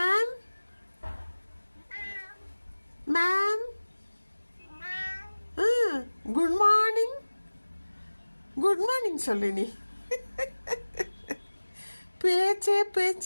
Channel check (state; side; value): inverted; both; correlation -1.00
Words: Ma'am good morning. Good morning சொல்லு நீ. பேச்சே